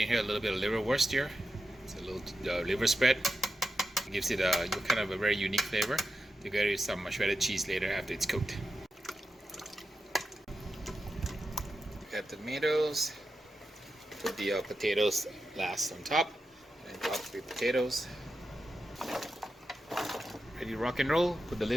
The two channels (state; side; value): normal; both; correlation 0.90